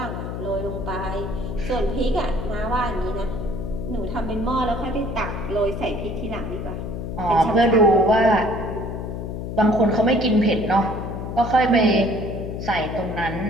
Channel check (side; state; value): left; noise; hum, 6 dB below the sound